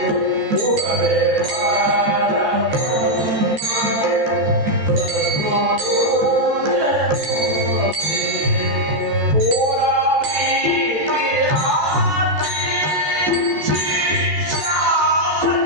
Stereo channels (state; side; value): late; left; 14 ms